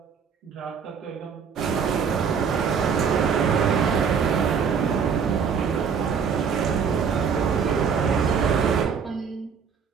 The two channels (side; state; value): left; quieter; 6.5 dB